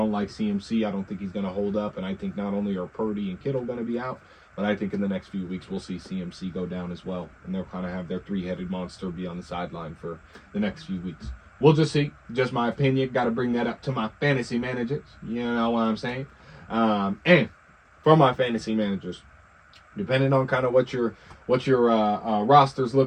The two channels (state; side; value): identical; both; correlation 1.00